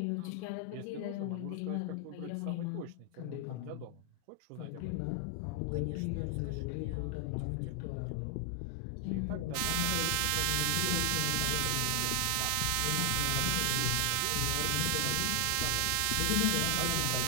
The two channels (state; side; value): different; both; correlation 0.00